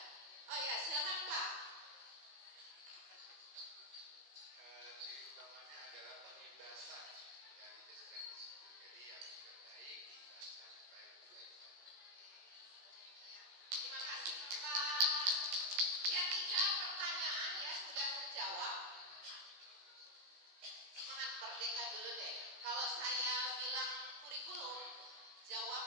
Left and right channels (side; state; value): left; late; 16 ms